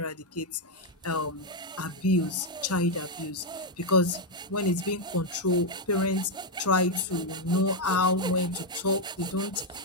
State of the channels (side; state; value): both; normal; correlation 0.01